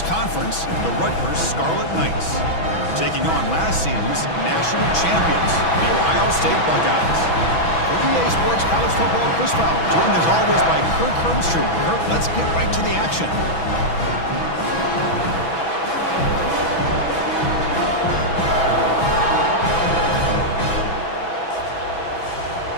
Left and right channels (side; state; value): right; late; 6.1 ms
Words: conference, the Rutgers Scarlet Knights, taking on last season's national champions, the Ohio State Buckeyes. For EA Sports College Football, Chris Fowler, joined as always by Kirk Hermstrom. Kirk, let's get right to the action.